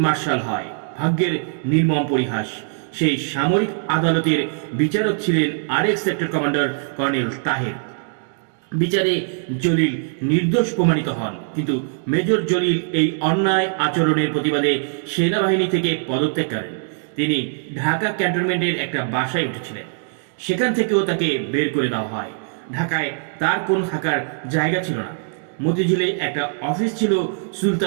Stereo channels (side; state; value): left; silent; digital silence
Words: মার্শাল হয়। ভাগ্যের নির্মম পরিহাস, সেই সামরিক আদালতের বিচারক ছিলেন আরেক সেক্টর কমান্ডার কর্নেল তাহের। বিচারে জলিল নির্দোষ প্রমাণিত হন, কিন্তু মেজর জলিল এই অন্যায় আচরণের প্রতিবাদে সেনাবাহিনী থেকে পদত্যাগ করেন। তিনি ঢাকা ক্যান্টনমেন্টের একটা বাসায় উঠেছিলেন, সেখান থেকেও তাকে বের করে দেওয়া হয়। ঢাকায় তার কোন থাকার জায়গা ছিল না। মতিঝিলে একটা অফিস ছিল